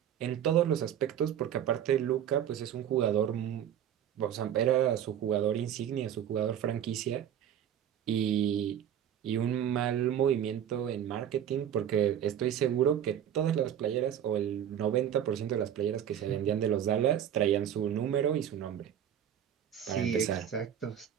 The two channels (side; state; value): left; quieter; 9.9 dB